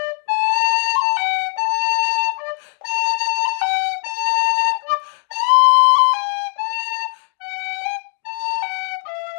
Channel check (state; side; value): silent; right; digital silence